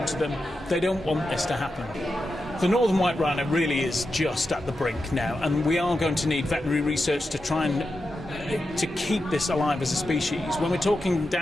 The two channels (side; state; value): both; normal; correlation 0.89